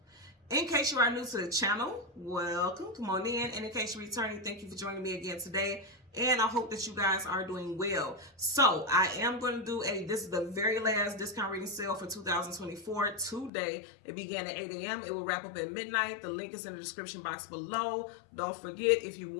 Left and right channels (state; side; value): drops out; right; at 13.5 s